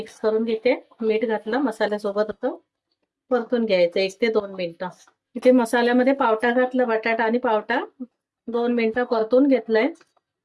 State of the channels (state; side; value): identical; both; correlation 1.00